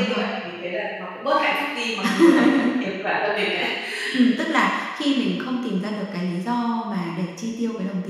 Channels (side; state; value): both; identical; correlation 1.00